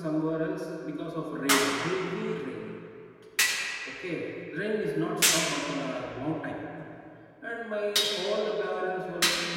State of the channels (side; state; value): both; identical; correlation 1.00